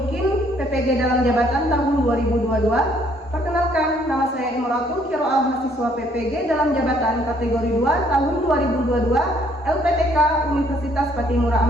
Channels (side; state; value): both; normal; correlation 0.65